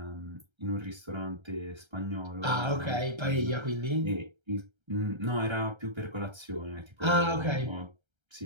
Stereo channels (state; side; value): late; left; 1.3 ms